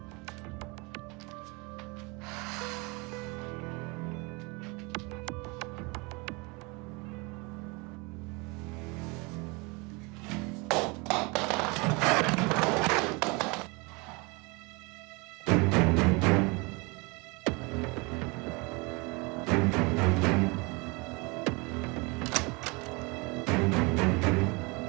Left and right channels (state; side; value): quieter; left; 27.8 dB